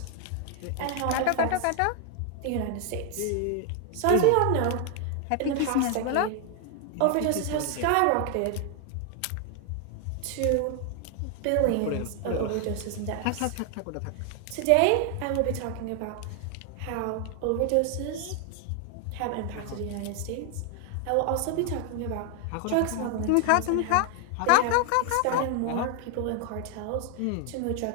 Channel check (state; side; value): different; both; correlation 0.00